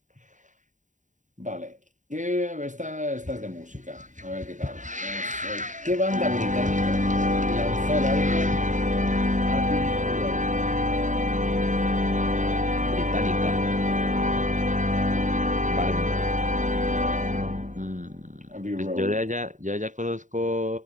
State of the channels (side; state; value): left; late; 0.36 ms